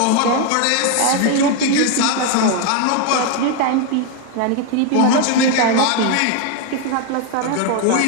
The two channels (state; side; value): different; both; correlation 0.01